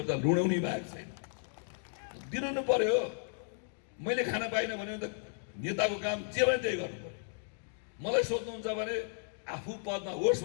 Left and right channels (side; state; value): right; silent; digital silence